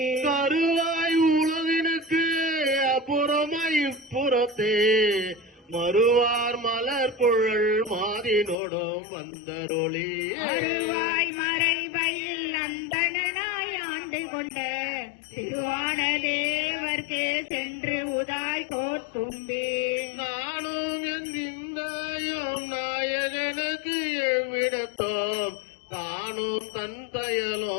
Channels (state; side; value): drops out; right; at 8.6 s